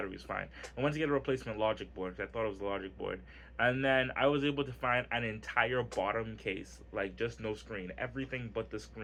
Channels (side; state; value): both; identical; correlation 1.00